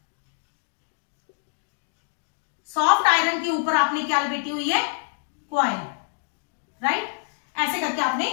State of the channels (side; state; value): right; silent; digital silence